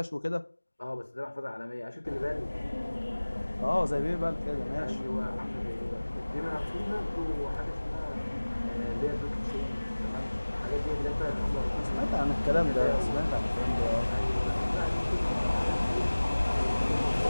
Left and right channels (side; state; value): both; inverted; correlation -1.00